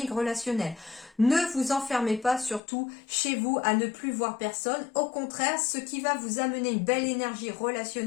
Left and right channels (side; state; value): right; drops out; at 2.6 s